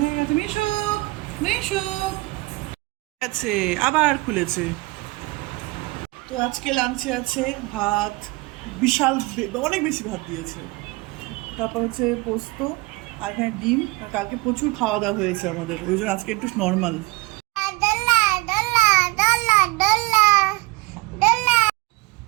গেছে। মিশুক, মিশুক আছে, আবার খুলেছে। তো আজকে লাঞ্চে আছে ভাত, বিশাল অনেক বেশি ভাত দিয়েছে। তারপর হচ্ছে পোস্ত, আর এখানে ডিম। আর কালকে প্রচুর খাওয়া দাওয়া হয়েছে আমাদের, ওই জন্য আজকে একটু নর্মাল।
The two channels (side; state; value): left; quieter; 23.6 dB